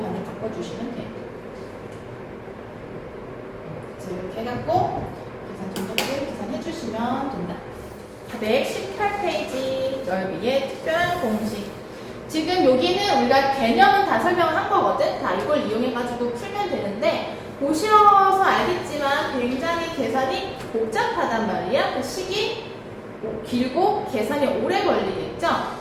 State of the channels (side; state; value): both; identical; correlation 1.00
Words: 반대 바꿔주시면 돼요. 이렇게 해갖고 계산 정도를 계산해 주시면 된다. 118페이지 넓이의 특별한 공식. 지금 여기는 우리가 개념은 다 설명을 한 거거든. 다 이걸 이용해가지고 풀면 되는데 보셔서 알겠지만 굉장히 계산이 복잡하단 말이야. 그 식이 길고 계산이 오래 걸리겠죠?